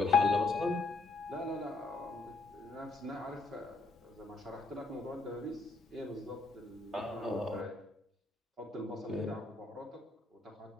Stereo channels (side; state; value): right; quieter; 3.5 dB